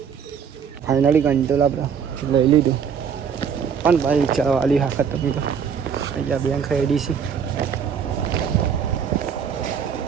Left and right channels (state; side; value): quieter; left; 7.2 dB